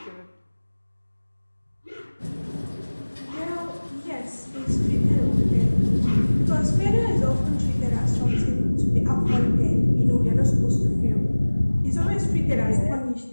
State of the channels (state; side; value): inverted; both; correlation -1.00